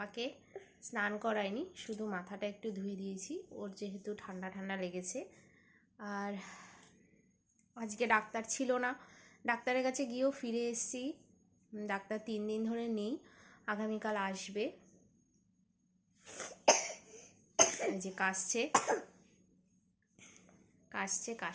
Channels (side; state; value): both; identical; correlation 1.00